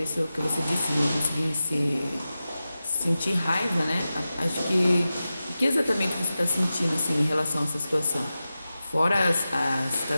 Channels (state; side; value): inverted; both; correlation -0.94